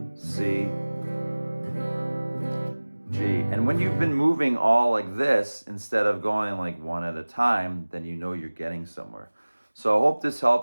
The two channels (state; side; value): inverted; both; correlation -1.00